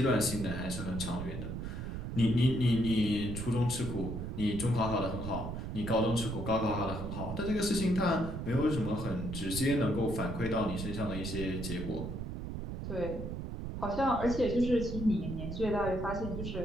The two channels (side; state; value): right; noise; rumble, 5 dB below the sound